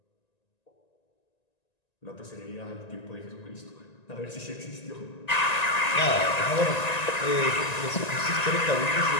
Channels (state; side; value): late; right; 1.9 ms